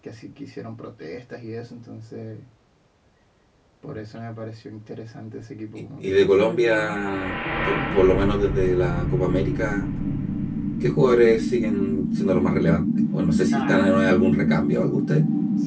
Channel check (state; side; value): identical; both; correlation 1.00